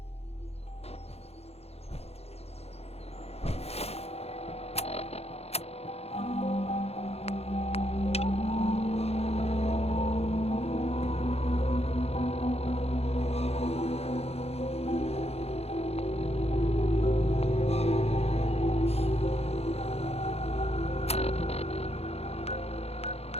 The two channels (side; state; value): right; late; 0.30 ms